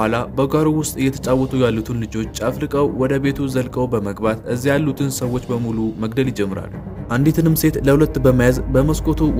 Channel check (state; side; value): identical; both; correlation 1.00